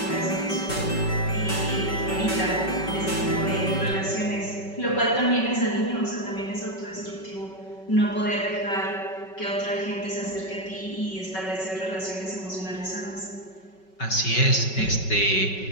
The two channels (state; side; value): late; right; 5.3 ms